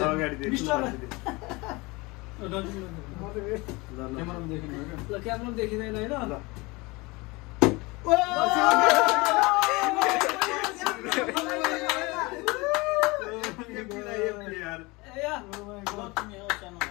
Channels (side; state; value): right; quieter; 24.6 dB